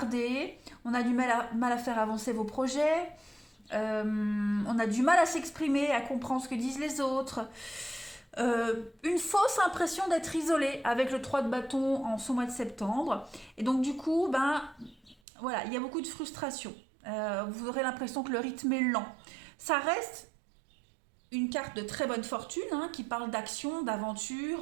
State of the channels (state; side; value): drops out; left; at 15.2 s